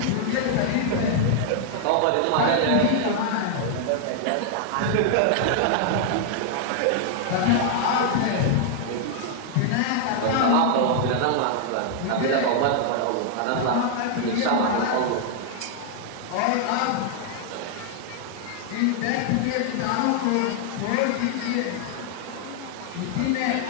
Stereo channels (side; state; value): both; different; correlation -0.01